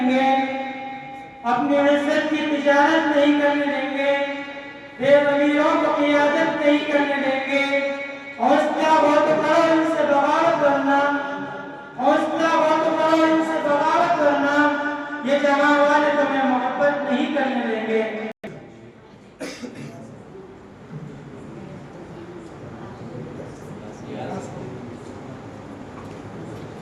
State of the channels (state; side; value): identical; both; correlation 1.00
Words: گے، اپنی عزت کی تجارت نہیں کرنے دیں گے، بے ضمیروں کو قیادت نہیں کرنے دیں گے، حوصلہ بہت کرو ان سے بغاوت کرنا، حوصلہ بہت کرو ان سے بغاوت کرنا، یہ جہاں والے تمہیں محبت نہیں کرنے دیں گے۔